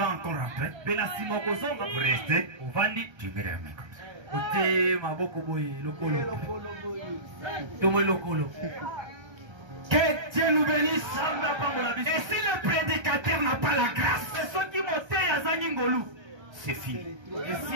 encore rentrer. Vous restez. Tu mets la main comme ça. Que Dieu nous bénisse. Et si le prédicateur n'a pas la grâce, c'est fini.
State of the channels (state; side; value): late; left; 1.3 ms